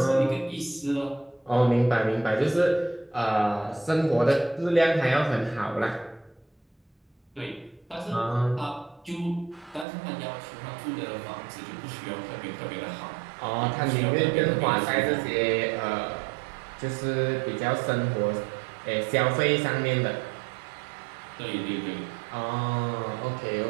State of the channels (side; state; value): left; drops out; at 9.9 s